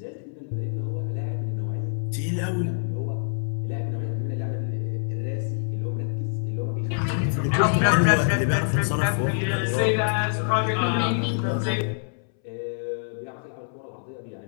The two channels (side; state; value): right; silent; 61 dB below the other